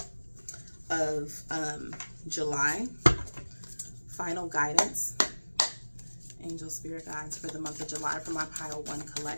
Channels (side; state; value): both; inverted; correlation -1.00